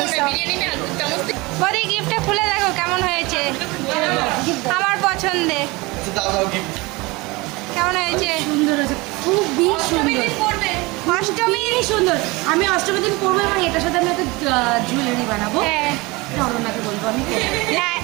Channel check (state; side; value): quieter; left; 23.7 dB